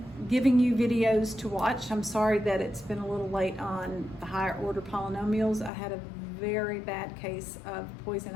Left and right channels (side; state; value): right; drops out; at 5.7 s